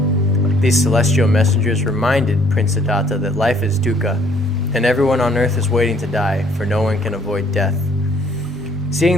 These celestial messengers reminded Prince Siddhartha that life is dukkha, and everyone on earth is waiting to die, for no one can avoid death.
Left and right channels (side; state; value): both; normal; correlation 0.62